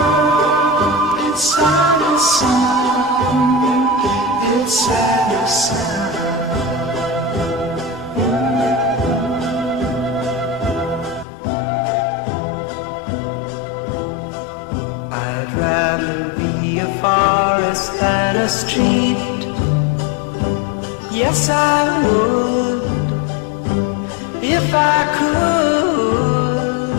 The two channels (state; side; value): drops out; right; at 11.2 s